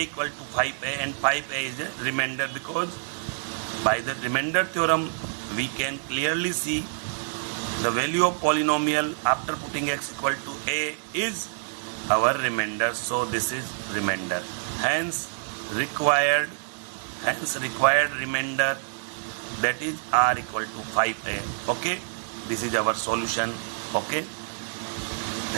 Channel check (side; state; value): left; silent; digital silence